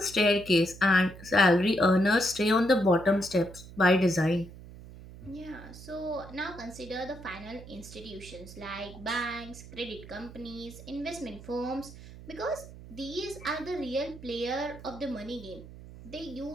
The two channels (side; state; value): right; noise; hum, 16 dB below the sound